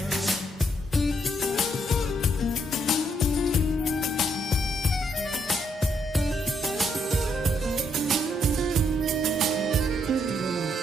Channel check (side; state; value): both; normal; correlation 0.74